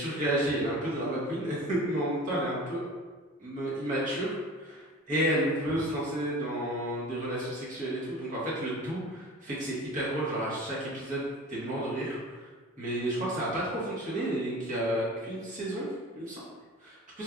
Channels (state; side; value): normal; both; correlation 0.38